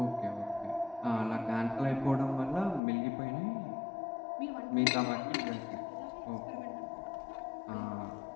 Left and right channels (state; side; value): drops out; right; at 2.8 s